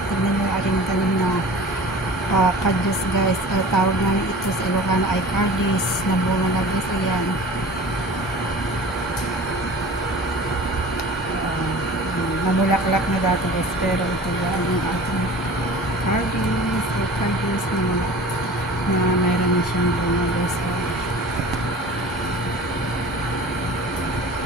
Tignan nyo aking tanim na kadyos guys. Tawag namin ito sa Ilocano ay cardis na bunga na guys. Ayan. Mamulaklak na dati guys. Pero ito yan yung ating cardis. Ay cardis na mayroon na siyang bunga guys.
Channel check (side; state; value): both; normal; correlation 0.40